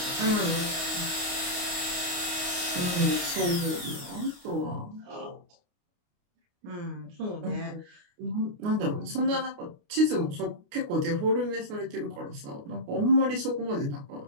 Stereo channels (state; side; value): late; left; 29 ms